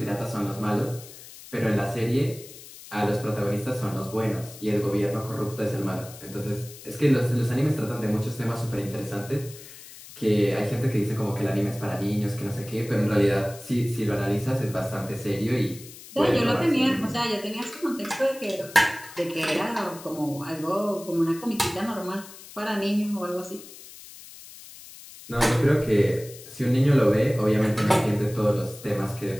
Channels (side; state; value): left; noise; hiss, 17 dB below the sound